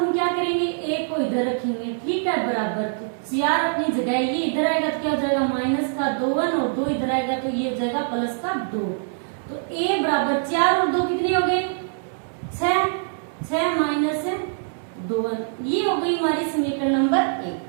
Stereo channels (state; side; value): silent; left; digital silence